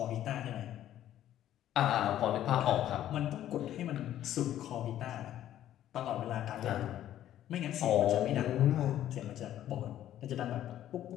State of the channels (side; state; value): right; quieter; 12.1 dB